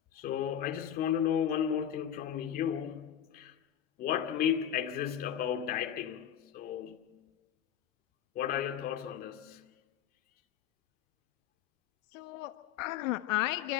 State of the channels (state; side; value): quieter; right; 9.8 dB